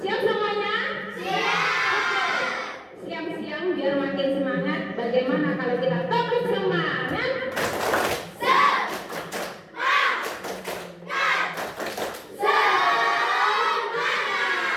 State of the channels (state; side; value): identical; both; correlation 1.00